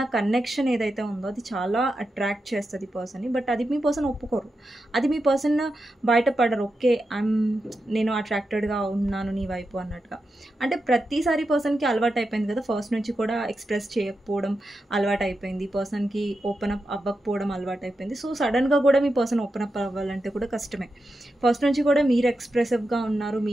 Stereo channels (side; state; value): both; normal; correlation 0.88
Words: కనెక్షన్ ఏదైతే ఉందో అది చాలా అట్రాక్ట్ చేస్తుంది ఈ పర్సన్ని. బట్ అది మీ పర్సన్ ఒప్పుకోరు, అది మీ పర్సన్ బయటపడరు. ఓకే నేను అట్రాక్టెడ్గా ఉన్నాను నీ వైపు అన్నట్టుగా. అంటే ప్రతిసారి పర్సన్కి అలవాటు అయిపోయింది కదా, ఫస్ట్ నుంచి కూడా ఎక్స్ప్రెస్ చేయకపోవడం అలవాటు అయిపోయింది, పర్సన్కి ఓపెన్ అప్ అవ్వకపోవడం అలవాటు అయిపోయింది. సో సడన్గా కూడా మీ పర్సన్ ఓపెన్ అప్ అవ్వాలంటే కూడా కష్టమే. ఫస్ట్ నుంచి కూడా మీరు ఎక్స్ప్రెసివ్గా ఉన్నారు,